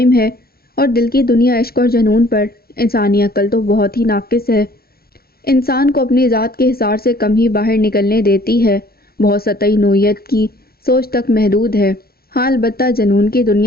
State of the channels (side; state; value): right; late; 0.44 ms